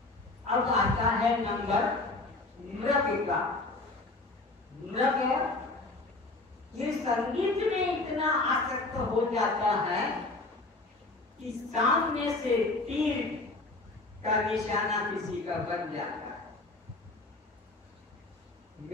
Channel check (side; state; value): right; quieter; 3.1 dB